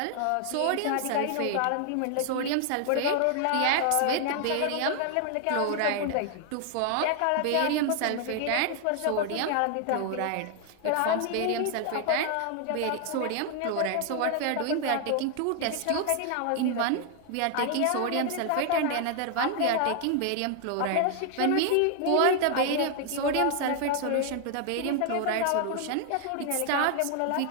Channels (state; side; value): different; both; correlation 0.00